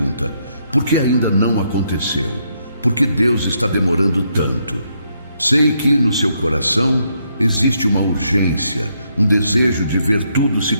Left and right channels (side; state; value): both; inverted; correlation -0.76